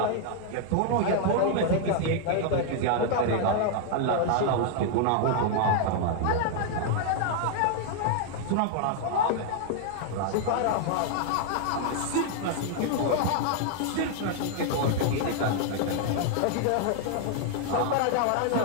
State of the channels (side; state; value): both; different; correlation 0.00